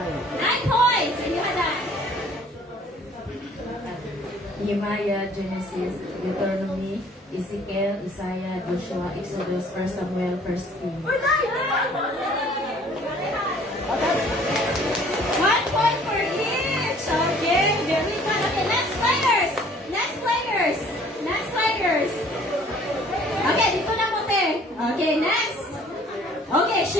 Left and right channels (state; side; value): normal; both; correlation 0.55